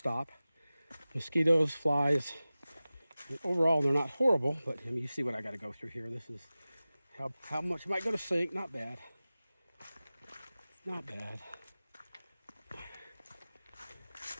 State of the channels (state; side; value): inverted; both; correlation -0.97